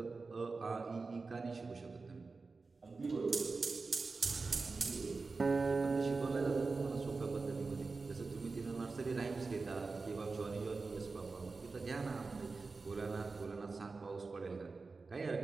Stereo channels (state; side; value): quieter; left; 4.1 dB